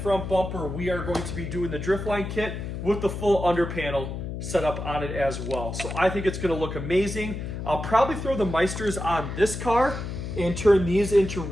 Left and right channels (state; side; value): noise; left; hum, 6 dB below the sound